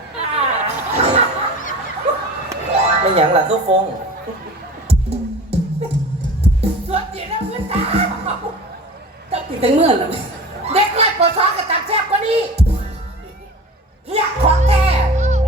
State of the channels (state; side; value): normal; both; correlation 0.37